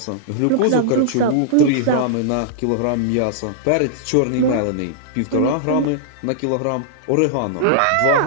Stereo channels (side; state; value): both; different; correlation -0.01